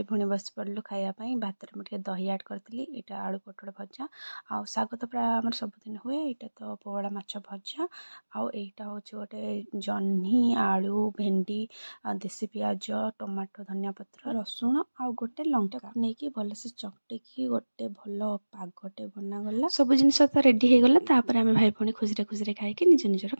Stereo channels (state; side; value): inverted; both; correlation -1.00